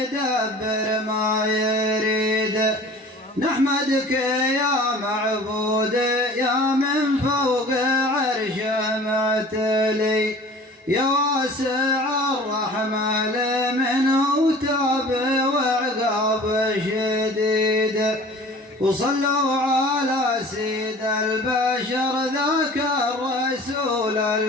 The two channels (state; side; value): normal; both; correlation 0.44